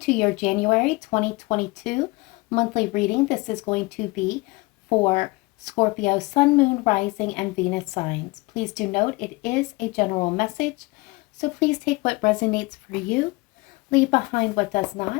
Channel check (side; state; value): right; quieter; 24.0 dB